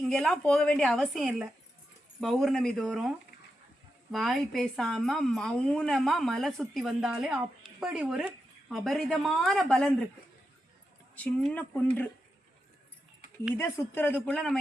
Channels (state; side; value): normal; both; correlation 0.87